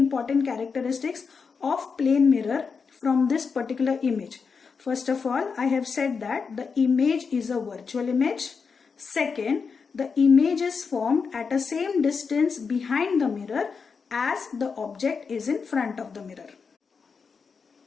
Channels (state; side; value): quieter; right; 5.4 dB